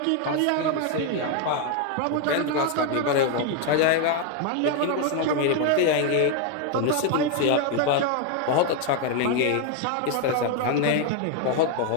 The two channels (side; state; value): both; different; correlation 0.01